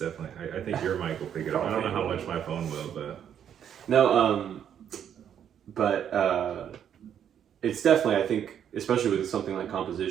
I think your mic will pick it up. I don't know how much my phone will, but no. It's definitely, I think, especially with something like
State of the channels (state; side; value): quieter; left; 9.1 dB